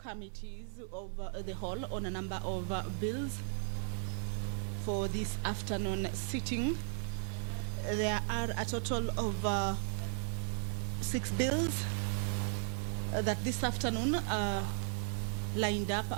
of the whole on a number of bills for this afternoon sitting. There are a total of 6 bills that this afternoon are lined up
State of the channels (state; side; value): silent; left; 54 dB below the other